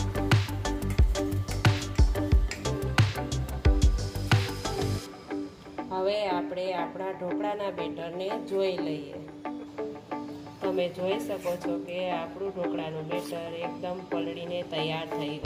હવે આપણે આપણા ઢોકળાના બેટરને જોઈ લઈએ। તમે જોઈ શકો છો કે આપણું ઢોકળાનું બેટર એકદમ પલળીને તૈયાર થઈ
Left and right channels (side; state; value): both; identical; correlation 1.00